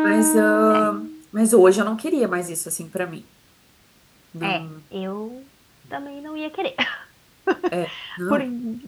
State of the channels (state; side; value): identical; both; correlation 1.00